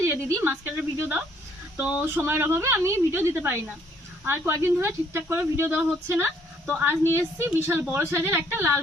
যে দিদি মাছ কাটার ভিডিও দাও, তো সময়ের অভাবে আমি ভিডিও দিতে পারি না। আর কয়েকদিন ধরে ঠিকঠাক করে ভিডিও দেওয়া হচ্ছে না। তো আজ নিয়ে এসেছি বিশাল বড় সাইজের একটা লাল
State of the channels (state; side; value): normal; both; correlation 0.64